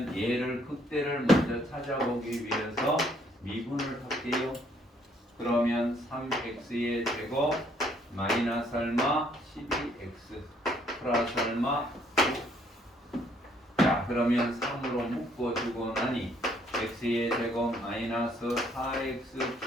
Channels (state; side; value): normal; both; correlation 0.66